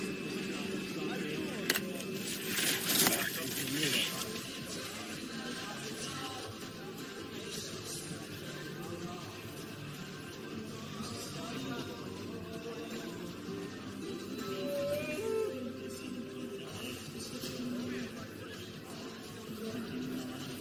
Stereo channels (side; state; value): both; identical; correlation 1.00